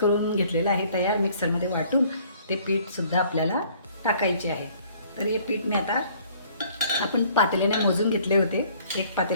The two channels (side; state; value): both; inverted; correlation -0.58